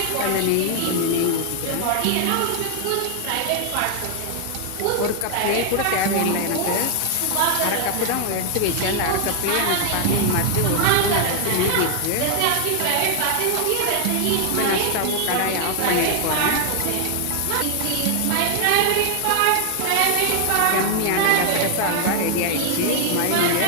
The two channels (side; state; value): both; different; correlation 0.00